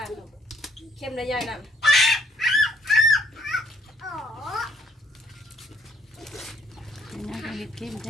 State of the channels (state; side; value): normal; both; correlation 0.66